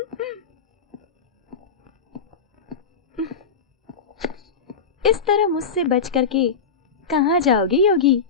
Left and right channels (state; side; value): quieter; right; 5.4 dB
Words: इस तरह मुझसे बच करके कहाँ जाओगे योगी?